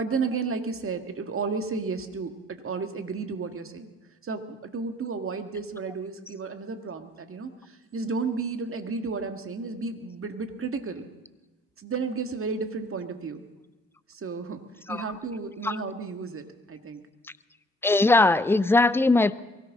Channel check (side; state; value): both; normal; correlation 0.57